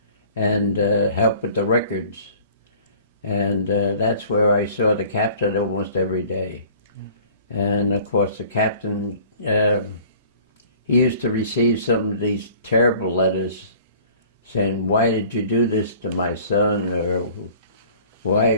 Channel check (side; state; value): both; inverted; correlation -0.50